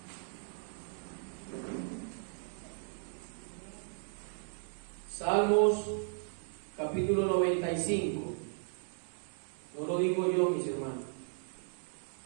Salmos capítulo 95. No lo digo yo, mis hermanos.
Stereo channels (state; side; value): silent; left; 54 dB below the other